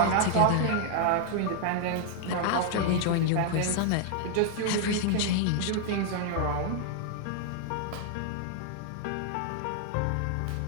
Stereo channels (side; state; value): both; different; correlation 0.00